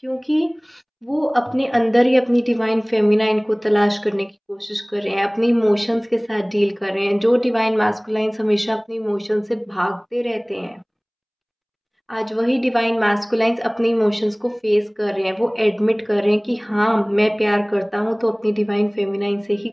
क्योंकि वो अपने अंदर ही अपनी डिवाइन फेमिनाइन को तलाश करने की कोशिश कर रहे हैं, अपने इमोशंस के साथ डील कर रहे हैं। जो डिवाइन मैस्कुलाइंस हमेशा अपने इमोशंस से भागते रहते हैं, आज वही डिवाइन मैस्कुलाइंस अपने इमोशंस को फेस कर रहे हैं। वो एडमिट कर रहे हैं कि हाँ, मैं प्यार करता हूँ तो अपनी डिवाइन फेमिनाइन से ही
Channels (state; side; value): identical; both; correlation 1.00